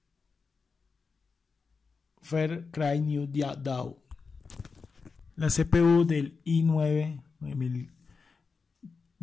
Cry New Dawn. La CPU del i9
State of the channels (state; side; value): quieter; right; 4.8 dB